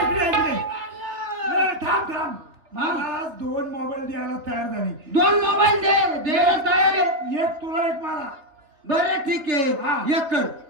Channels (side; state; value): left; late; 3.5 ms